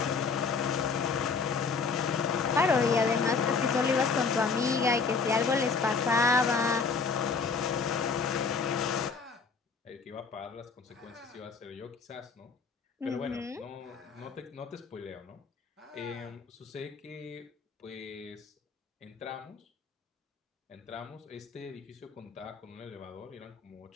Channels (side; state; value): right; quieter; 5.0 dB